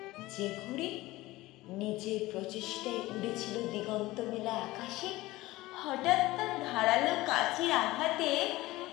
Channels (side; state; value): right; quieter; 18.6 dB